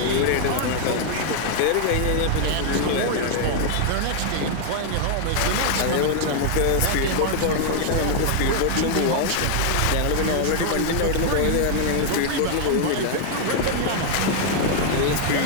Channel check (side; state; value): both; different; correlation 0.00